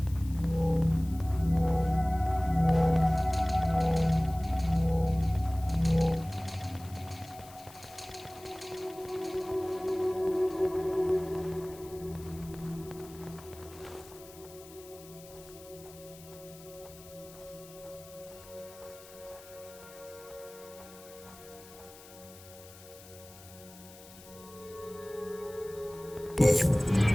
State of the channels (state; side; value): noise; left; hiss, 20 dB below the sound